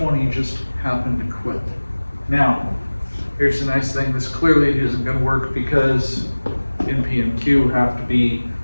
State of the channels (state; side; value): inverted; both; correlation -1.00